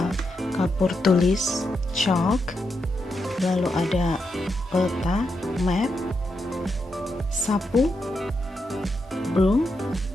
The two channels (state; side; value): normal; both; correlation 0.83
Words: kapur tulis, chalk, lalu ada peta, map, sapu, broom,